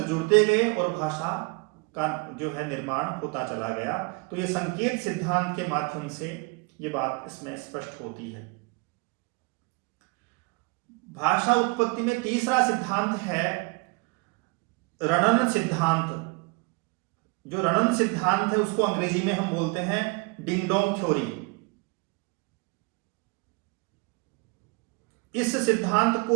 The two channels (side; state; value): left; quieter; 29.8 dB